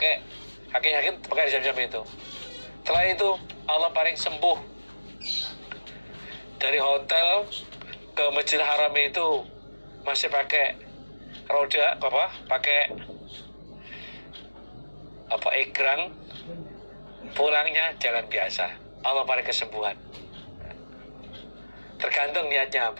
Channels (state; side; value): inverted; both; correlation -1.00